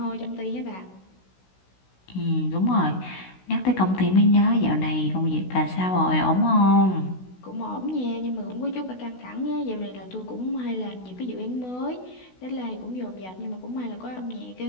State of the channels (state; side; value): late; right; 16 ms